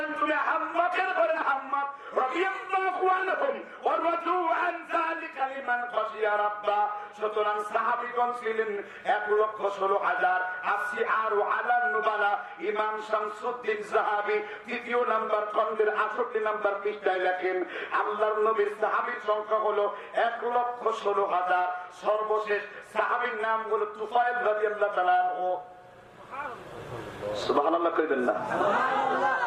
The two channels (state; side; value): identical; both; correlation 1.00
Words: তুমি হাম্মাকের ঘরে হাম্মাক রাদিয়াল্লাহু আনহুম ওয়া রাদু আন যালিকা লিমান খাশিয়া রাব্বা। সুতরাং সাহাবীগণ ছিলেন 1,16,000। আসি আরো আলান নুবালা। ইমাম শামসুদ্দিন যাহাবী 3য় নাম্বার খণ্ডের 68 নাম্বার পৃষ্ঠায় লেখেন আল্লাহর নবীর সাহাবীর সংখ্যা হলো 1,16,000। সর্বশেষ সাহাবীর নাম হলো তুফাইল রাদিয়াল্লাহু তাআলা আনহু। সুবহানাল্লাহ কইবেন না?